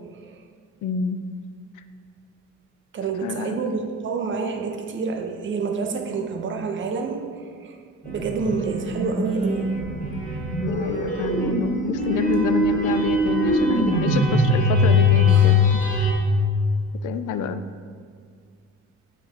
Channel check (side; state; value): both; normal; correlation 0.34